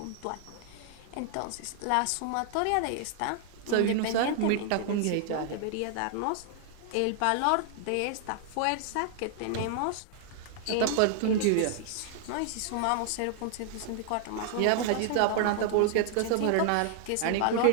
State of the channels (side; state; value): both; different; correlation 0.00